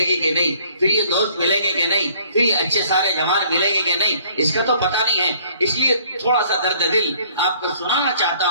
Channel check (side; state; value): both; inverted; correlation -0.58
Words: گی کہ نہیں، پھر یہ دوست ملیں گے کہ نہیں، پھر یہ اچھے سارے جوان ملیں گے کہ نہیں، اس کا تو پتہ نہیں ہے۔ اس لیے تھوڑا سا درد دل آپ کو سنانا چاہتا